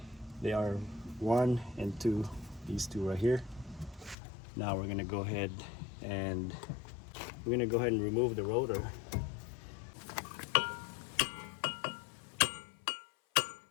They are 1 and 2, these two right here. Now we're gonna go ahead and remove the rotor.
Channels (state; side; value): drops out; right; at 4.2 s